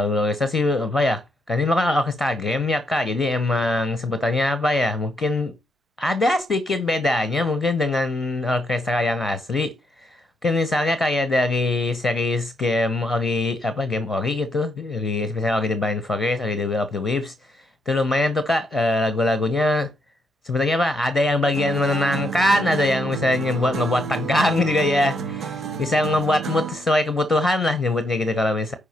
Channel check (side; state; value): both; normal; correlation 0.77